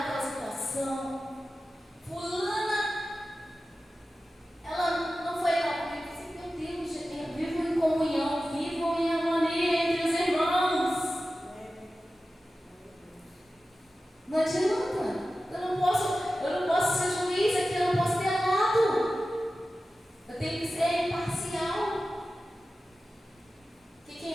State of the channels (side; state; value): both; normal; correlation 0.94